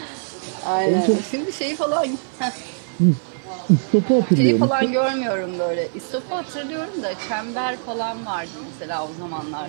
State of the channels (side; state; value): left; silent; digital silence